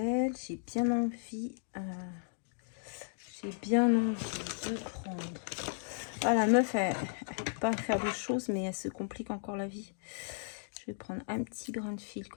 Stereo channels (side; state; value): right; silent; digital silence